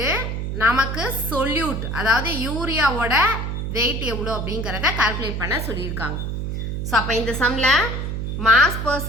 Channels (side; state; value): right; noise; hum, 3 dB below the sound